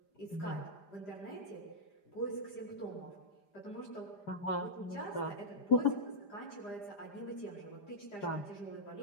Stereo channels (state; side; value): late; right; 5.0 ms